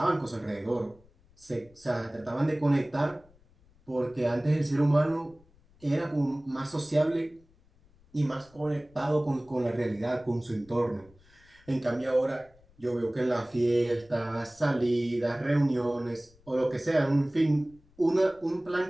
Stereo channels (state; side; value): noise; left; rumble, 29 dB below the sound